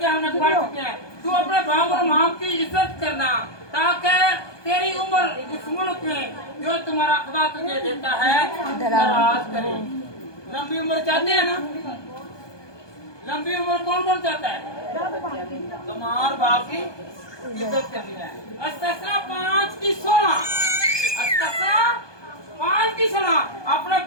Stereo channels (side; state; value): right; late; 1.2 ms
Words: हमने पढ़ चुके हैं। तू अपने बाप और माँ की इज्जत करना ताकि तेरी उम्र उस मुल्क में जो तुम्हारा खुदा तुझे देता है दराज करे। लंबी उम्र चाहते हैं ना? लंबी उम्र कौन कौन चाहता है? तो माँ और बाप की इज्जत करनी है। अस्तिया 5 की 16। अस्तिया 5 की 16। अपने